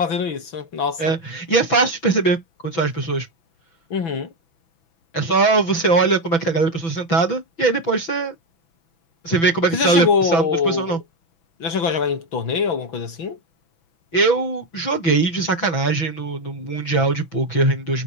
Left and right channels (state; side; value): late; right; 6.0 ms